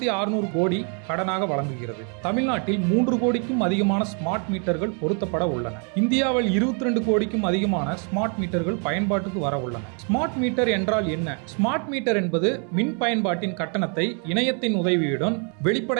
கோடி கடனாக வழங்குகிறது. தமிழ்நாட்டில் 3 கோடிக்கும் அதிகமான ஸ்மார்ட் மீட்டர்கள் பொருத்தப்பட உள்ளன. இந்தியாவில் 22 கோடிக்கும் அதிகமான ஸ்மார்ட் மீட்டர்கள் பயன்பாட்டுக்கு வர உள்ளன. ஸ்மார்ட் மீட்டர் என்றால் என்ன? ஸ்மார்ட் மீட்டர் என்பது மின் பயன்பாட்டின் கட்டணத்தை இணையத்தின் உதவியுடன்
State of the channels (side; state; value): left; quieter; 39.6 dB